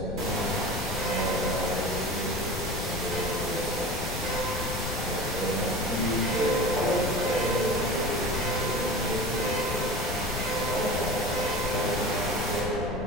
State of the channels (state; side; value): noise; left; rumble, 5 dB below the sound